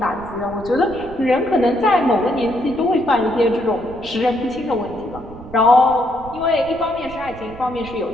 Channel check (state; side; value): noise; right; rumble, 17 dB below the sound